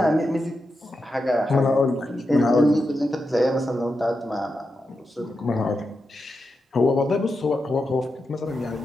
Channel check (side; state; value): both; normal; correlation 0.88